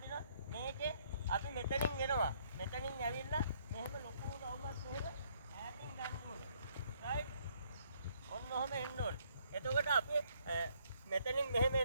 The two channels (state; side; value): inverted; both; correlation -0.67